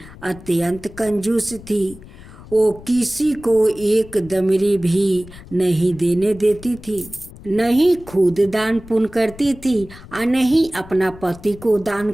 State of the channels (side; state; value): left; noise; rumble, 18 dB below the sound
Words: अत्यंत कंजूस थी। वो किसी को एक दमड़ी भी नहीं देने देती थी, नहीं खुद दान पुण्य करती थी और नहीं अपना पति को दान